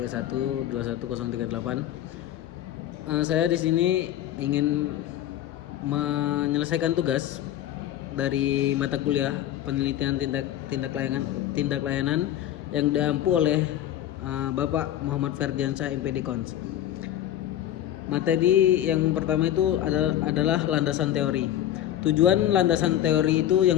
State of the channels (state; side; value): quieter; right; 12.0 dB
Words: 21038. Saya di sini ingin menyelesaikan tugas dari mata kuliah penelitian tindak layanan yang diampu oleh Bapak Muhammad Ferdiansyah MPD Cons. Materi yang pertama itu adalah landasan teori. Tujuan landasan teori itu